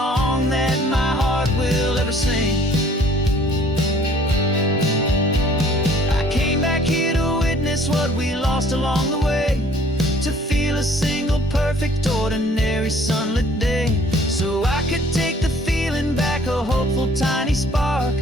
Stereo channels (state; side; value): normal; both; correlation 0.57